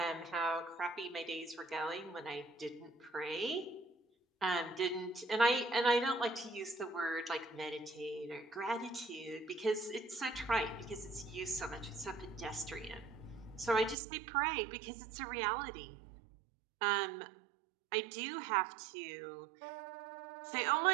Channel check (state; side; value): drops out; left; at 14.0 s